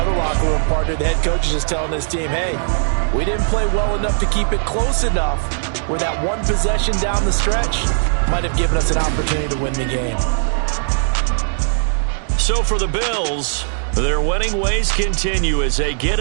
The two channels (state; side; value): silent; left; digital silence